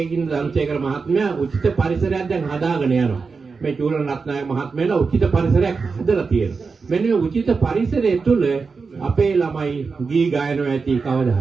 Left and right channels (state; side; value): quieter; left; 4.8 dB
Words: ධම්සේකර මහත්මයා උචිත පරිසරයක් දැන් හදාගෙන යනවා. මේ චූලන රත්නායක මහත්මයාලා උචිත පරිසරයක් හදලා තියෙනවා. මෙන්න මේ උචිත පරිසරය තුළ අපේ ළමයි ගී ගයනවා ඇති කවදා